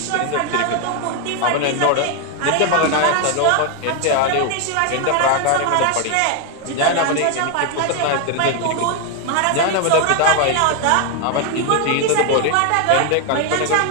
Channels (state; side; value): different; both; correlation 0.01